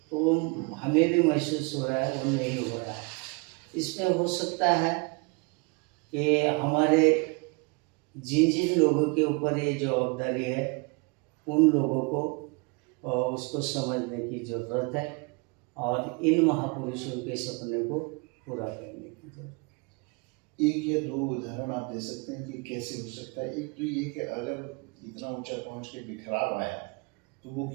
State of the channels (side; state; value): left; quieter; 30.7 dB